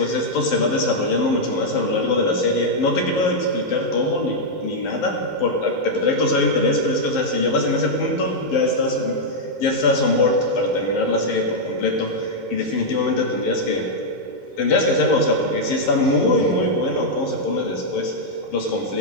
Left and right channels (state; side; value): late; right; 11 ms